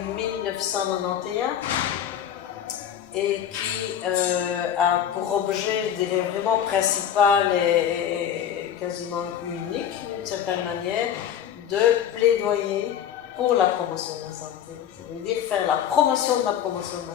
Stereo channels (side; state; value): right; quieter; 9.6 dB